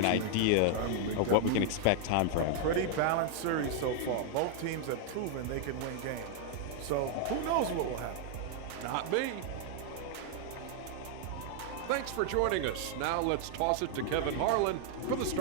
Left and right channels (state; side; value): different; both; correlation 0.00